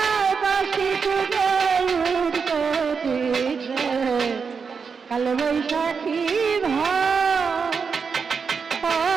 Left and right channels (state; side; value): quieter; left; 5.6 dB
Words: বাসি তুলে উঠতো দিছে কাল বৈশাখী